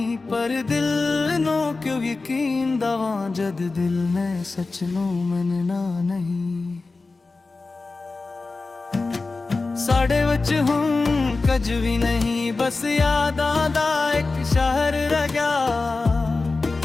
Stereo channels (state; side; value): quieter; right; 3.7 dB